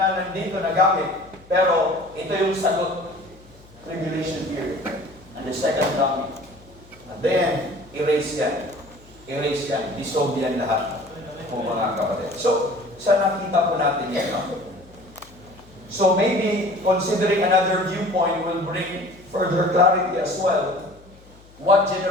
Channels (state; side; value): noise; left; hum, 25 dB below the sound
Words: nandito nagamit. Pero ito yung sagot. Tribulation period. And the second coming. And then, erase yan. Erase yan. Dissolve yan lahat. Kung mga kapatid. So, saan nakita po natin yan? So maybe considering another viewpoint will bring further clarity as well. What